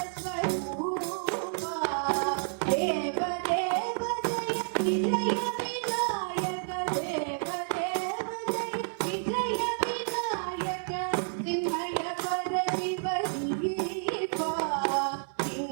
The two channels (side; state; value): left; silent; 58 dB below the other